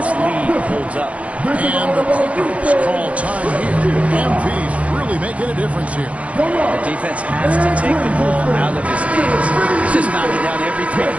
lead holds up. And the Clippers call time here. MP's really making a difference here. The defense has to take the ball out of his hands. He's just knocking down every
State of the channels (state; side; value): late; left; 0.064 ms